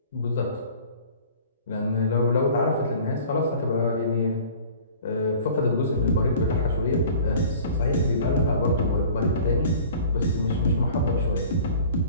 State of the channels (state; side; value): inverted; both; correlation -0.46